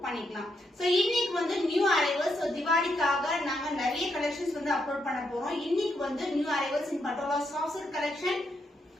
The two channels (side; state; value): both; normal; correlation 0.80